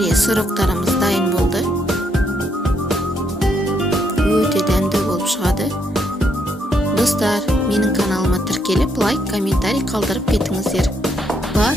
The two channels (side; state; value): both; normal; correlation 0.74